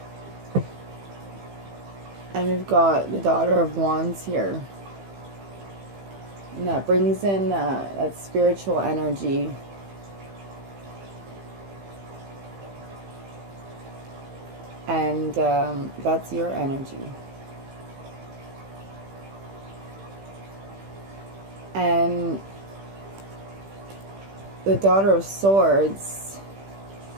And we've got the Daughter of Wands here. And that brings in that spiritual energy. And that's your energy. And the Daughter of Swords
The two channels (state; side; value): late; left; 15 ms